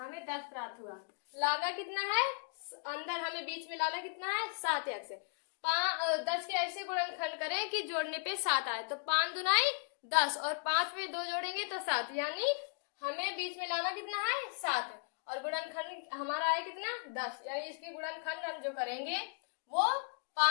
10 प्राप्त हुआ। लाना कितना है, अंदर हमें बीच में लाना कितना है 7x। 10 के ऐसे गुणनखंड करें कि जोड़ने पे 7 आए। तो 5 दुनाई 10 और 5 में 2 जोड़ेंगे तो 7, यानी हमें बीच में लाना कितना है 7, और गुणनखंड हमारा आए कितना 10, यानी इसके गुणनखंड हम जो करेंगे वो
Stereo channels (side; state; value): right; silent; 54 dB below the other